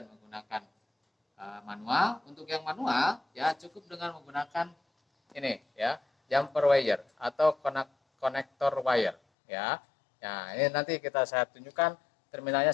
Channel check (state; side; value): drops out; right; at 9.2 s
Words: menggunakan manual. Untuk yang manual ya, cukup dengan menggunakan ini ya, jumper wire atau konektor wire ya. Nah, ini nanti saya tunjukkan